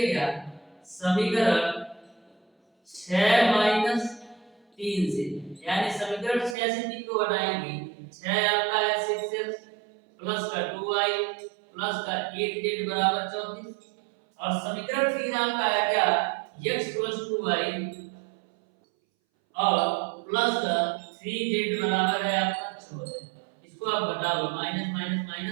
क्या, समीकरण 6 माइनस 3 से, यानी समीकरण 6 से 3 को घटाएंगे, 6 आपका है 6x प्लस का 2y प्लस का 8z बराबर 34। और समीकरण 3 आपका है क्या, x प्लस 2y और प्लस का 3z बराबर है आपका 14। इसको आप घटा लो, माइनस माइनस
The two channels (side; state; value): left; drops out; at 6.6 s